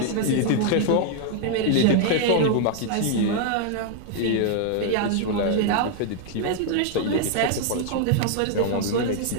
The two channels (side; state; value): both; different; correlation 0.00